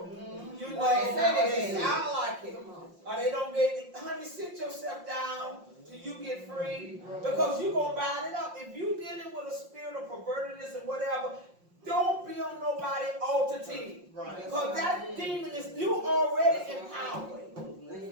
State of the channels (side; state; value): left; late; 5.6 ms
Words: You know, they sound like it. Or they don't get, honey, sit yourself down till you get free. Because you're going to bind it up. If you're dealing with a spirit of pervertedness and whatever, don't be on nobody altar team. Because that demon is, you already empowered.